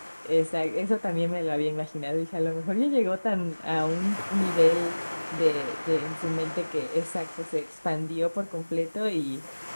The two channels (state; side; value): inverted; both; correlation -1.00